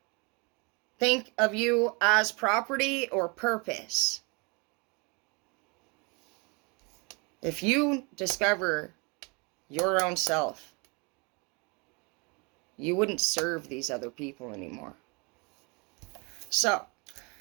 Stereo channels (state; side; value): quieter; left; 30.5 dB